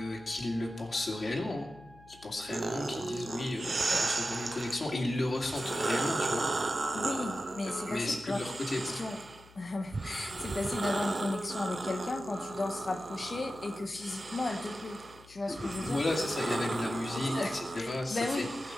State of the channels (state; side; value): noise; left; hum, 23 dB below the sound